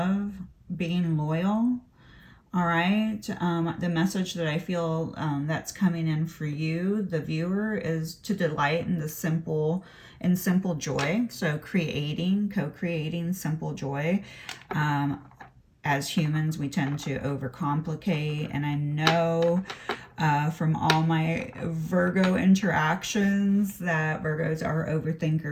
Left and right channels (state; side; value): identical; both; correlation 1.00